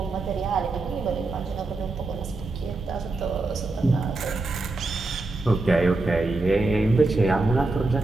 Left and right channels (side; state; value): left; quieter; 3.2 dB